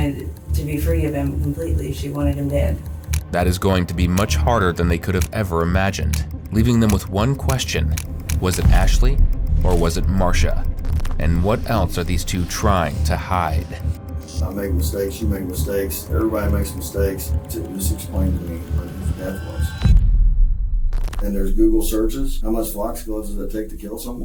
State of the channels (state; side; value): identical; both; correlation 1.00